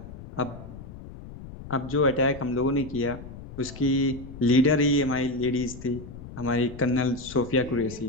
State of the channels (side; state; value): left; noise; rumble, 14 dB below the sound